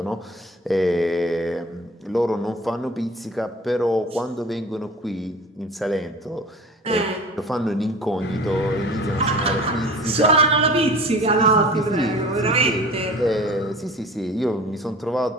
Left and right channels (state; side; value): normal; both; correlation 0.41